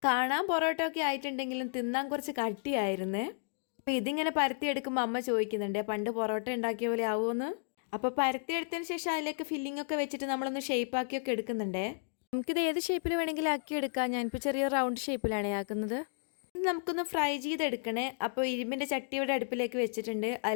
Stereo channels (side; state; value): right; silent; digital silence